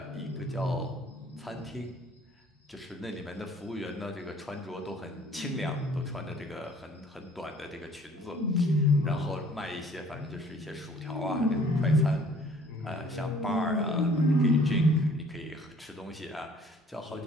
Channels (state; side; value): normal; both; correlation 0.55